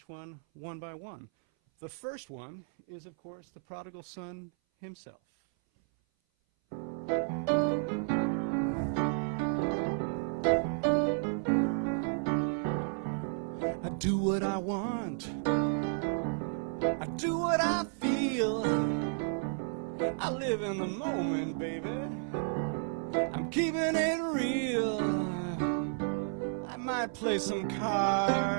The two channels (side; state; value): left; silent; 56 dB below the other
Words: one by one. The first one is, of course, the prodigal son himself. I do what I want. I do what I feel. I live in the moment, baby. I'm keeping it real. I might play some